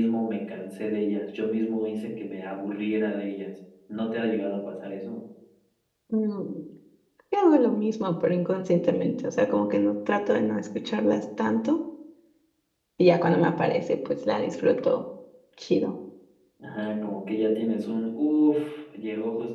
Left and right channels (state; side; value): identical; both; correlation 1.00